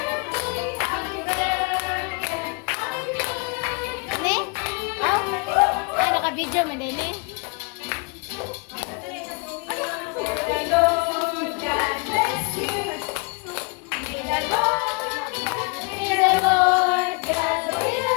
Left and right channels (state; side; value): quieter; right; 32.8 dB